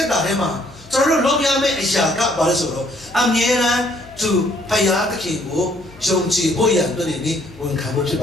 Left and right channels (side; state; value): left; noise; hum, 23 dB below the sound